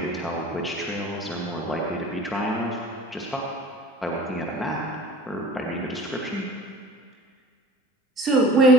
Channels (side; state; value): both; normal; correlation 0.41